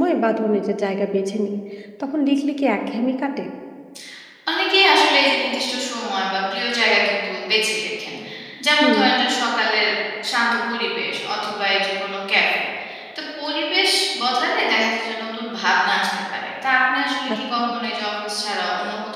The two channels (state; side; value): identical; both; correlation 1.00